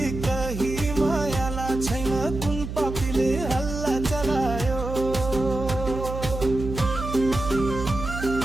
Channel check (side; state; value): right; noise; hum, 7 dB below the sound